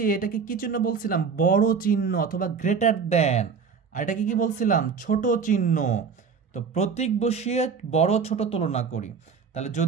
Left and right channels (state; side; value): quieter; left; 5.9 dB